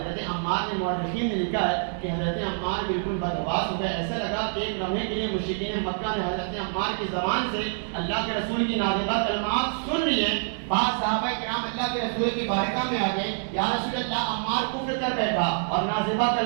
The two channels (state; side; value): silent; left; digital silence